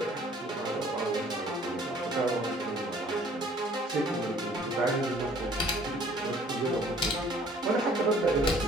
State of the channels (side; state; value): both; normal; correlation 0.56